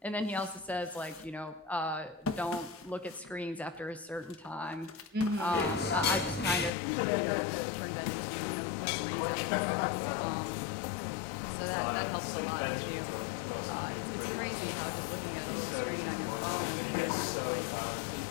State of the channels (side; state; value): right; drops out; at 6.7 s